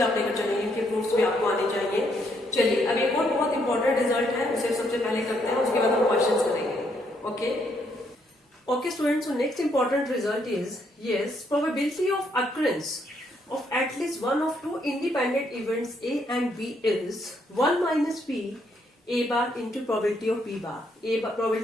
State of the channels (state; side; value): normal; both; correlation 0.73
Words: आप लेकर चलेंगे, इनके प्रूफ्स भी आपको आने चाहिए। चलिए अब एक और बहुत इंपॉर्टेंट रिजल्ट है, उसे सबसे पहले करते हैं, उसके बाद हम क्वेश्चन करेंगे। Okay okay students, so next important result is yes probability of occurrence of at least one of two independent events A and B is 1 minus P A bar into probability of B bar.